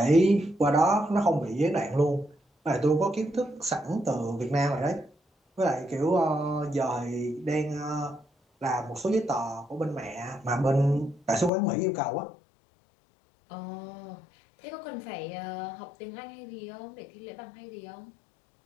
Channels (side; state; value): right; drops out; at 11.5 s